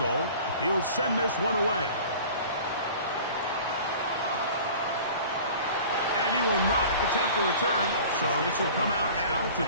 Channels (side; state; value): both; inverted; correlation -0.43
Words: He'll send this one away. And he will not attempt a return, so this will come out now to